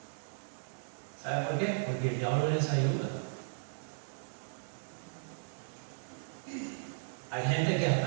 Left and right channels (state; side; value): silent; left; digital silence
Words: ¿Saben por qué? Porque el diablo les ayuda. Hay gente que